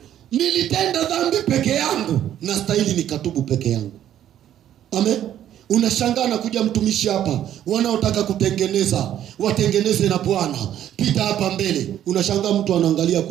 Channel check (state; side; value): quieter; left; 11.2 dB